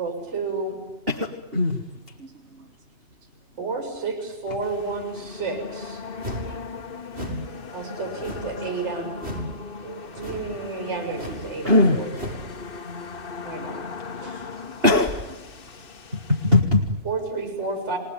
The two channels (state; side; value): late; left; 2.8 ms